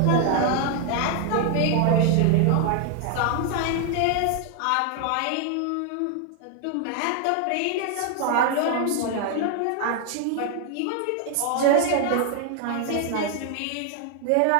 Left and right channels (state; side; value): different; both; correlation 0.00